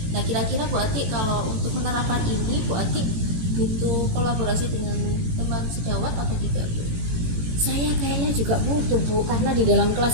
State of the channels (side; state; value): left; late; 18 ms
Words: Nah, kira-kira Bu Ati kalau untuk menerapkan ini Bu Ati butuh kolaborasi dengan teman sejawat atau tidak Bu? Saya kayaknya juga butuh Bu, karena di dalam